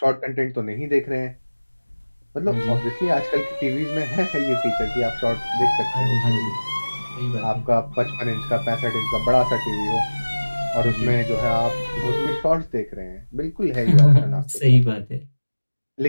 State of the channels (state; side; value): inverted; both; correlation -1.00